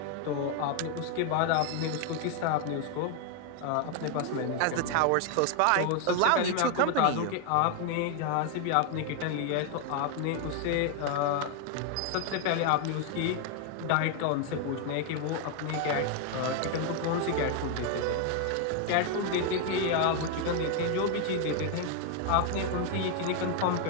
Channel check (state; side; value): different; both; correlation 0.01